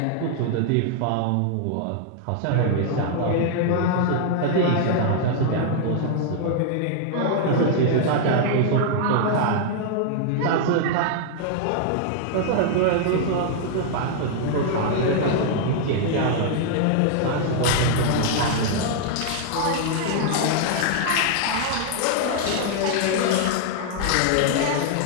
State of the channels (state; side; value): different; both; correlation -0.01